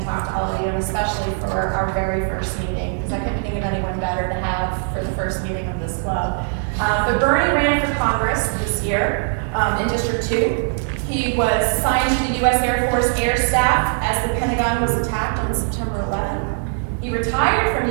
talk to all of you, and especially for our very first meeting, because I couldn't think of anyone better to have for the first meeting of this club. But Bernie ran for Congress this year in District 2. He was assigned to the U.S. Air Force Air Staff as the Pentagon was attacked on September 11th. He retired from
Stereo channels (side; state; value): left; silent; 58 dB below the other